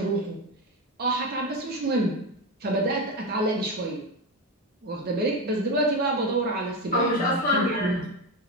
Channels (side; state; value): both; normal; correlation 0.15